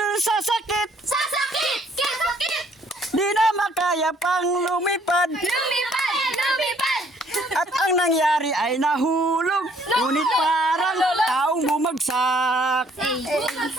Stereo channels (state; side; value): normal; both; correlation 0.62